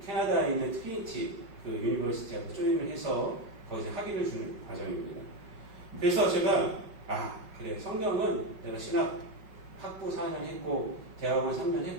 캐나다에 있는 트리니티 그 유니버시티하고 조인을 해서 거기서 학위를 주는 과정입니다. 그래서 제가 그래 성경은 내가 신학 학부 4년 했고 대학원 3년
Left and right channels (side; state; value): left; late; 5.4 ms